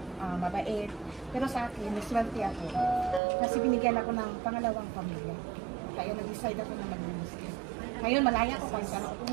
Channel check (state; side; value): drops out; left; at 3.2 s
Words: mabait. Pero sa akin, naswerte ako. Kasi binigyan ako ng pangalawang pamilya. Kaya nag-decide ako na mag-Muslim. Ngayon, malaya ko kahit saan ako